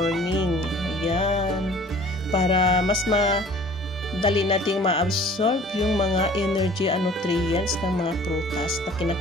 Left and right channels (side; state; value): both; normal; correlation 0.49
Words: Ayan. Para mas dali nating ma-absorb yung mga energy and nutrients ng mga prutas na